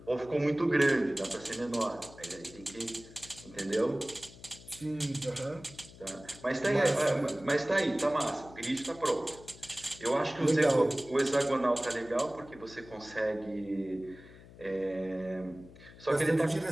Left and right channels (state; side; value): noise; left; hum, 20 dB below the sound